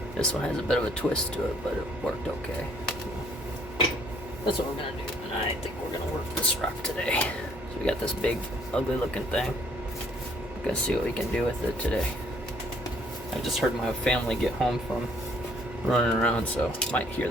This one has a bit of a twist to it, but it worked okay. That's what we're gonna do. And I think we're gonna work this rock today. So we got this big, ugly looking thing. We're gonna see what we can do with it today. I just heard my family get home from running around, so might hear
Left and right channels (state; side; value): normal; both; correlation 0.63